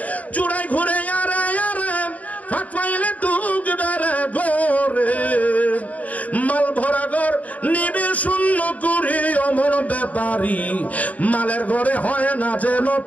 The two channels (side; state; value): right; late; 0.071 ms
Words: চূড়ায় ঘুরে আরে আরে সাত পাইলে ঢুকবে রে গোরে, মাল ভরা ঘর নিবে শূন্য করে অমর ব্যাপারী, মালের ঘরে হয় না যেন